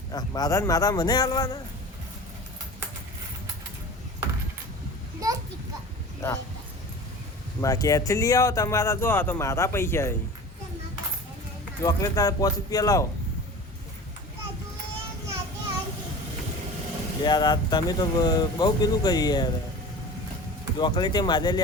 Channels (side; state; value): both; normal; correlation 0.37